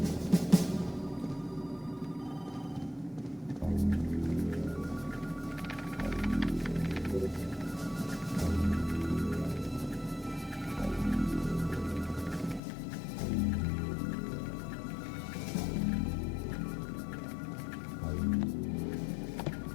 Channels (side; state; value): right; drops out; at 12.6 s